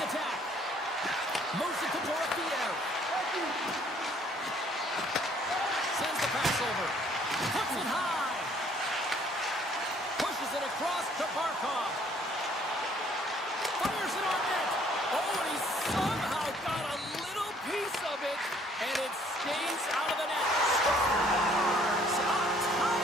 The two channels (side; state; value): both; normal; correlation 0.61